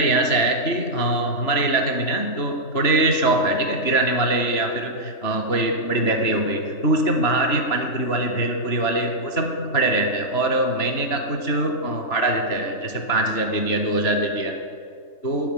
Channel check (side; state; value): right; late; 3.4 ms